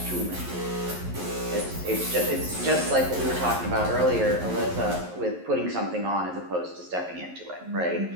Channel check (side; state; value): left; late; 11 ms